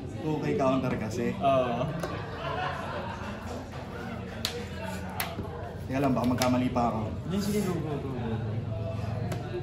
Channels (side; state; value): both; identical; correlation 1.00